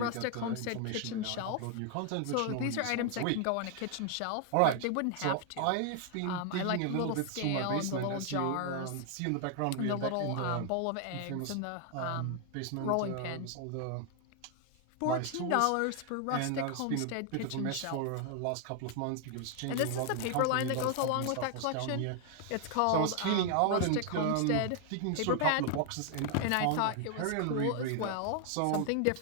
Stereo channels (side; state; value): both; different; correlation 0.00